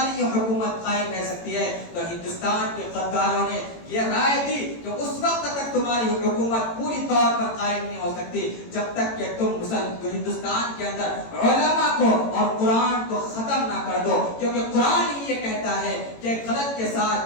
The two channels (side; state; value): right; late; 18 ms